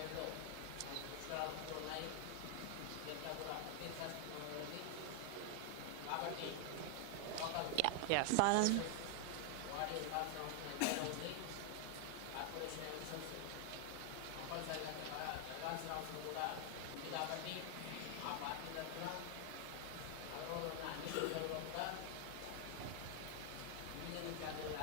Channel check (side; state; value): both; different; correlation 0.00